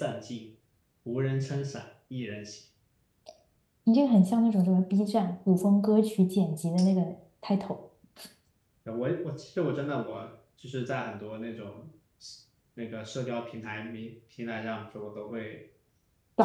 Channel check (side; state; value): both; identical; correlation 1.00